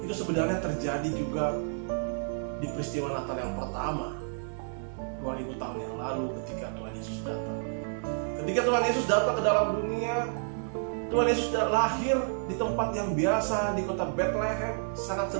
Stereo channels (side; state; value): left; silent; digital silence